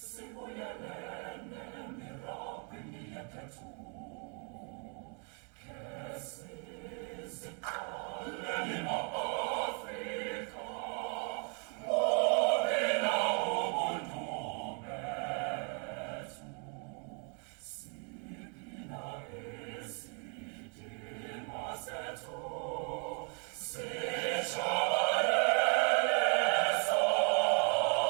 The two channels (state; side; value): quieter; left; 38.9 dB